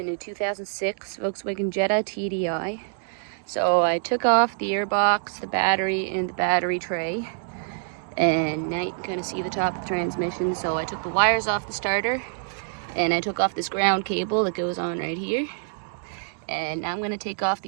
a 2006 Volkswagen Jetta TDI. So I took off the airbox, the battery, and the battery tray. And now you can kind of see the top of the transmission. So I took the wires off the starter, and I took off this ground cable that goes on right here. And now I'm going to take off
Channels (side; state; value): left; silent; digital silence